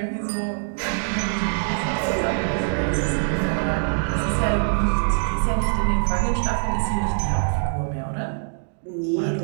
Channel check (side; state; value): left; silent; digital silence